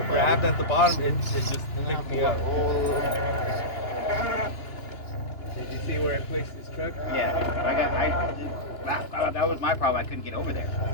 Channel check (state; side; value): late; right; 2.9 ms